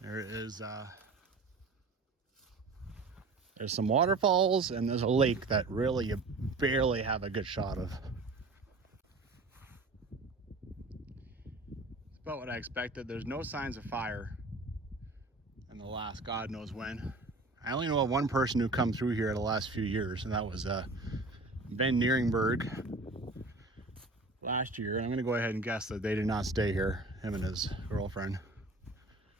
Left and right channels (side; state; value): left; quieter; 3.3 dB